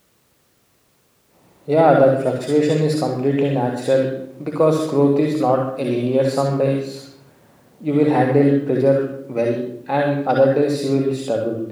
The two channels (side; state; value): both; identical; correlation 1.00